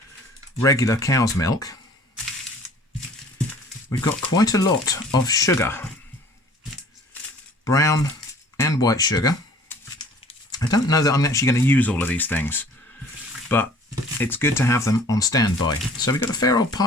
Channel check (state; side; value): normal; both; correlation 0.51